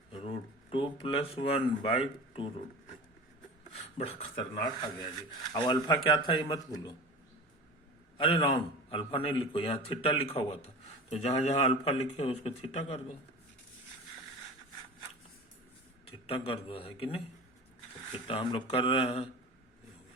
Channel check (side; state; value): both; normal; correlation 0.34